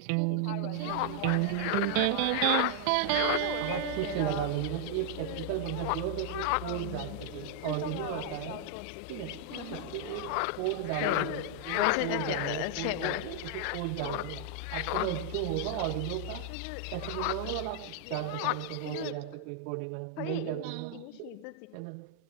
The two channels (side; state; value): both; different; correlation 0.00